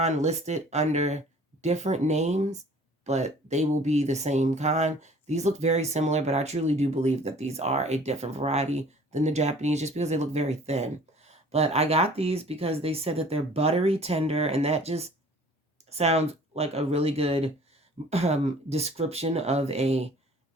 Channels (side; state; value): both; normal; correlation 0.50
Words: listed under different names, but they will be the same kind. These look very similar, but I truly do believe that these are a different variety than the Japanese, just because they look very thin. But I got these because they said that they're buttery tender, and that just sounds like a really good description of a